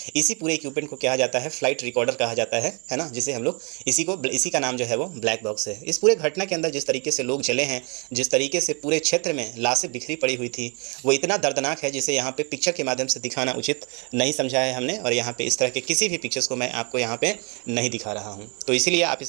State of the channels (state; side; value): quieter; left; 33.5 dB